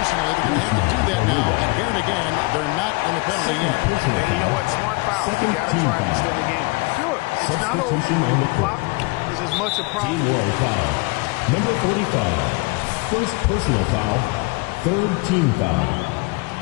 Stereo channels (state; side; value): quieter; right; 26.9 dB